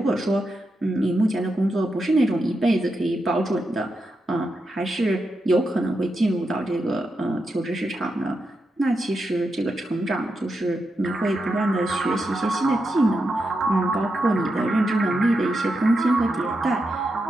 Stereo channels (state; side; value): normal; both; correlation 0.86